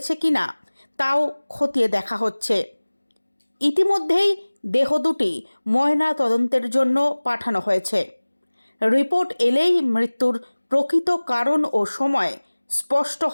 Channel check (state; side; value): inverted; both; correlation -1.00